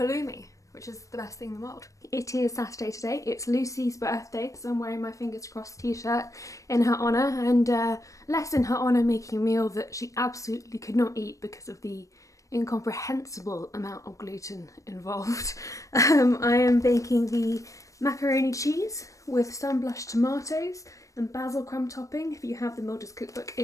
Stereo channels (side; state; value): right; late; 0.16 ms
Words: which is the best thing in the world. It is Saturday today, it's Lucy's birthday, so I'm wearing my fingers crossed t-shirt in her honour, and less in her honour making a meal that she absolutely could not eat because of the incomprehensible amount of gluten involved. I am baking the macaroni cheese with sunblush tomatoes and basil crumb topping. If you have the Mildred's cookbook,